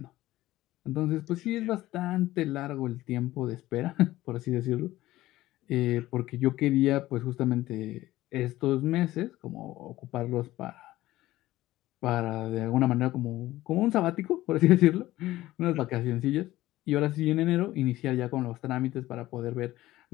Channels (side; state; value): right; quieter; 16.3 dB